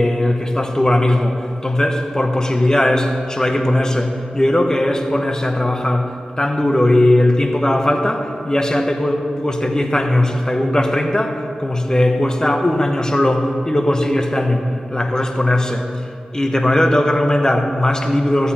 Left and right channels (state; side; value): normal; both; correlation 0.96